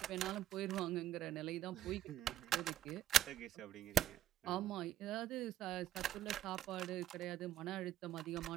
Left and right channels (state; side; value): quieter; left; 11.9 dB